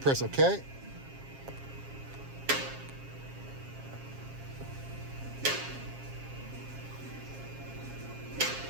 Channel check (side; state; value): left; late; 7.4 ms